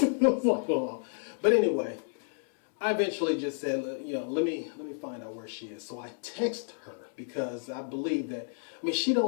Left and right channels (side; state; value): right; silent; 57 dB below the other